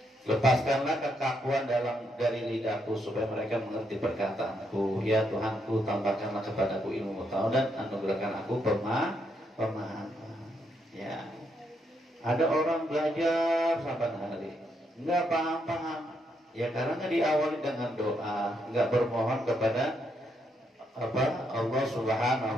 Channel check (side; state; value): both; normal; correlation 0.77